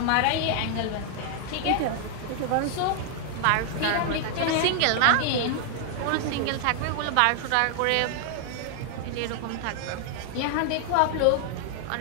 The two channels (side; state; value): both; different; correlation 0.00